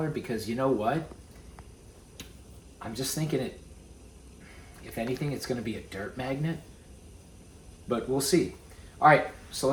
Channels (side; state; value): both; identical; correlation 1.00